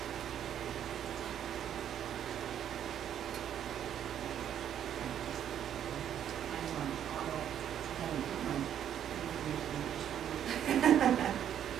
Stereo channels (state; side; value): quieter; left; 9.8 dB